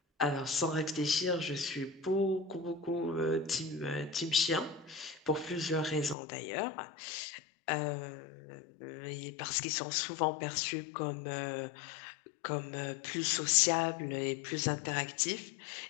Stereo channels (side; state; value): right; drops out; at 6.2 s